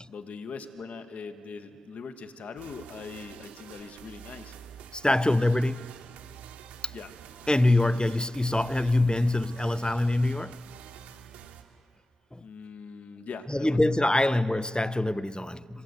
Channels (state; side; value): normal; both; correlation 0.95